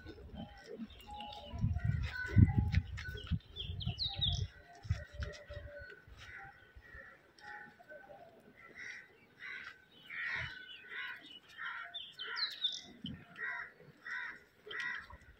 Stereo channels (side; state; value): both; identical; correlation 1.00